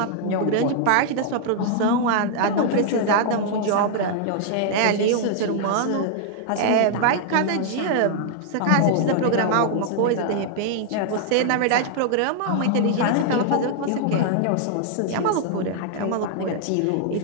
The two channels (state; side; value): different; both; correlation -0.01